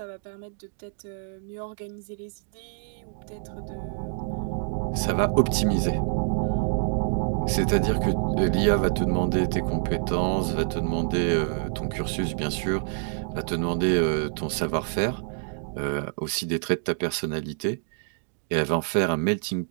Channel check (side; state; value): left; silent; 60 dB below the other